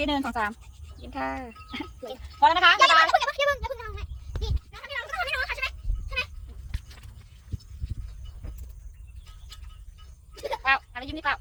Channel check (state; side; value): identical; both; correlation 1.00